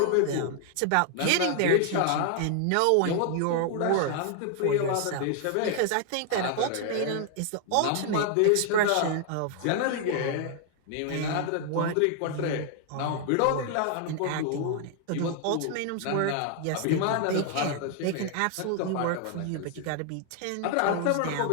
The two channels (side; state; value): both; different; correlation 0.00